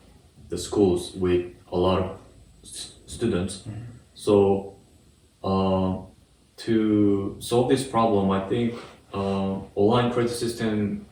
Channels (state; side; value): identical; both; correlation 1.00